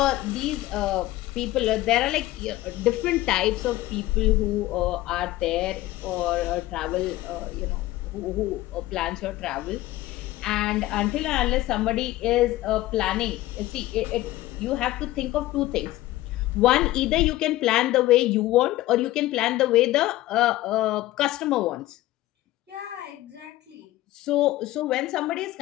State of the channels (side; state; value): right; quieter; 16.5 dB